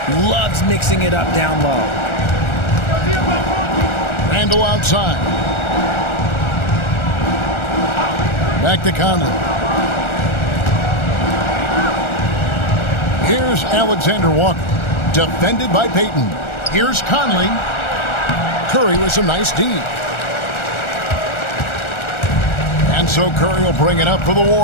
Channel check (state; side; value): late; right; 1.4 ms